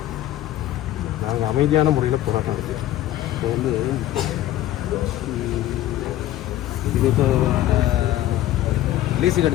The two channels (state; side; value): quieter; right; 13.7 dB